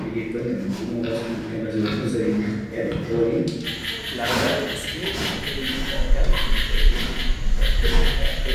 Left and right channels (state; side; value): identical; both; correlation 1.00